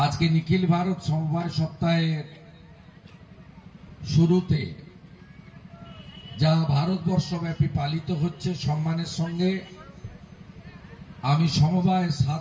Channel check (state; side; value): identical; both; correlation 1.00